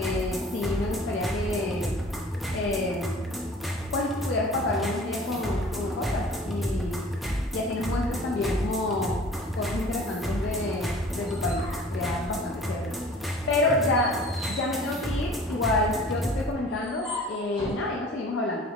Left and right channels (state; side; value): normal; both; correlation 0.47